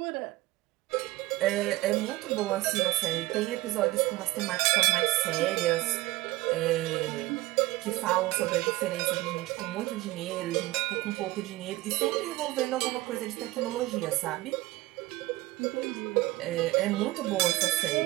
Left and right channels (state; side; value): quieter; left; 18.7 dB